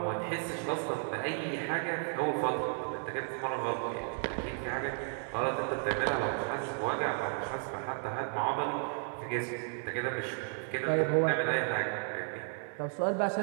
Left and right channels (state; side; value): silent; left; 55 dB below the other